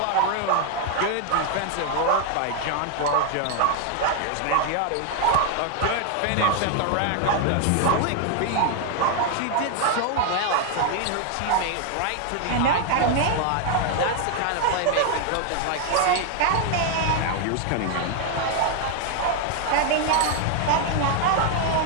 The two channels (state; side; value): different; both; correlation 0.00